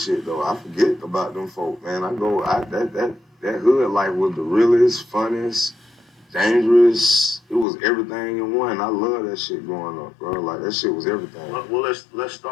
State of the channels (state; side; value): drops out; right; at 7.7 s